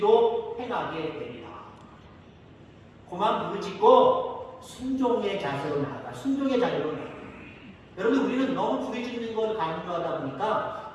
행하게 되리라. 그만 부르짖고 순종의 자세로 나아가. 순종의 자세로 나아가. 여러분 우리는 너무 부르짖는 걸 강조하다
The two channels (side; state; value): both; identical; correlation 1.00